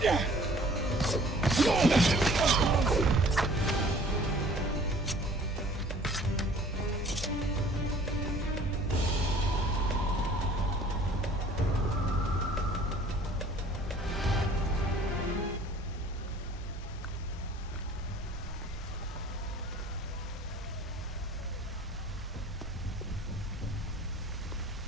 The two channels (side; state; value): both; normal; correlation 0.52